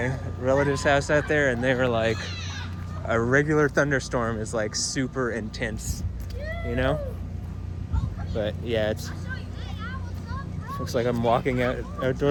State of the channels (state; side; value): identical; both; correlation 1.00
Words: relative's house out there, and they were like, a regular thunderstorm is like super intense, you know? But yeah, it's looks like I'm walking